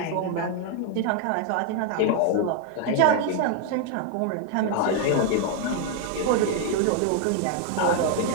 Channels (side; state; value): both; different; correlation 0.00